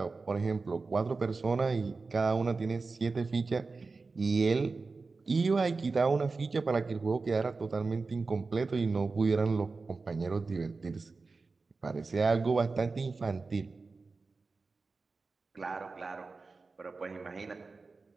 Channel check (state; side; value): quieter; left; 4.1 dB